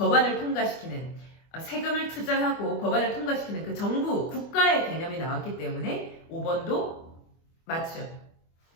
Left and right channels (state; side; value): late; right; 24 ms